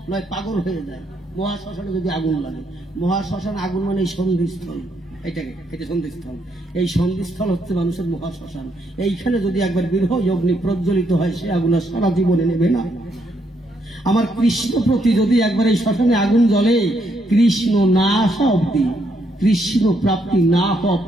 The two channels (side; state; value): both; normal; correlation 0.75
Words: নয় পাগল হয়ে যায়। মহাশ্মশানে যদি আগুন লাগে, মহাশ্মশান আগুন মানে এই সন্ধিস্থল, এটা সন্ধিস্থল। এই সন্ধিস্থল হচ্ছে মানুষের মহাশ্মশান। এইখানে যদি একবার বিরহ অগ্নি প্রজ্বলিত হয়, সে আগুন সারা জীবনে নেবে না। আমার কৃষ্ণ প্রতি যদি একবার এই শ্মশানে আগুন জ্বলে, কৃষ্ণ না আসা অব্দি, কৃষ্ণ প্রাপ্তি না হওয়া